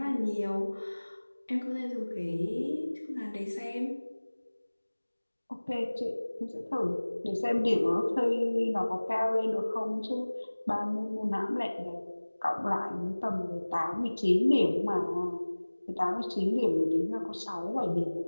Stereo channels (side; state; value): both; inverted; correlation -1.00